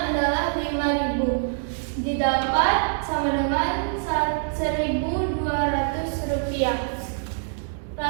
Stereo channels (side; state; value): left; silent; digital silence